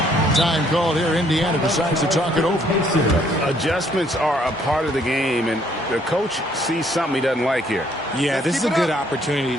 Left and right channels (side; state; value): both; normal; correlation 0.66